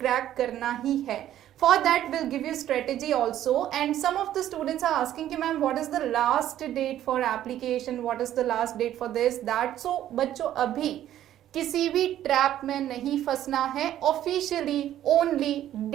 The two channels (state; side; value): quieter; left; 12.1 dB